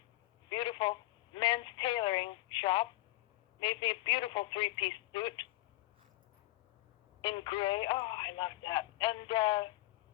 beautiful men's tailoring shop. Made me a beautiful 3-piece suit in gray. Oh, I loved that. And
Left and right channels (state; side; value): quieter; right; 18.3 dB